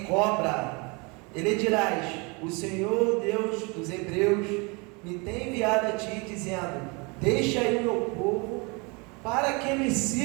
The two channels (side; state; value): left; quieter; 29.5 dB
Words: cobra. E lhe dirás: o Senhor Deus dos Hebreus me tem enviado a ti, dizendo: deixa aí o meu povo, para que me